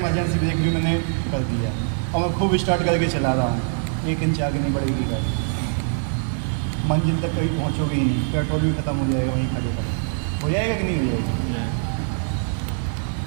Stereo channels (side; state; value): left; silent; 63 dB below the other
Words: ब्रेक भी मैंने कर दिया और मैं खूब स्टार्ट करके चला रहा हूँ। 1 इंच आगे नहीं बढ़ेगी गाड़ी, मंजिल तक कहीं पहुँचोगे ही नहीं। पेट्रोल भी खत्म हो जाएगा वहीं खड़े पर। हो जाएगा कि नहीं हो जाएगा?